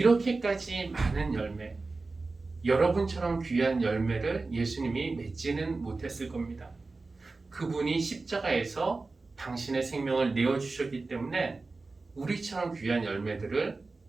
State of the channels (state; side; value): quieter; left; 3.7 dB